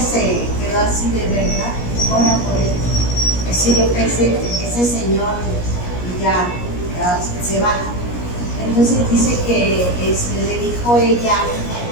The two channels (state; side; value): late; right; 17 ms